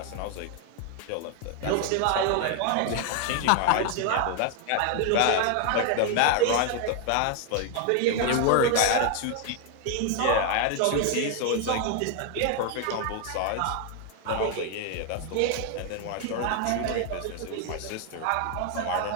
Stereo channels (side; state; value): both; different; correlation 0.01